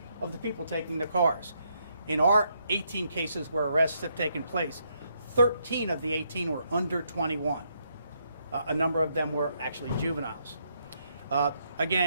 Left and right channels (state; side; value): inverted; both; correlation -0.75